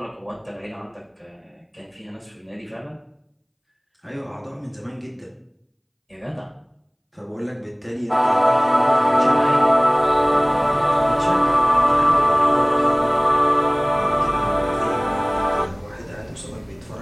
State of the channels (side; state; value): both; identical; correlation 1.00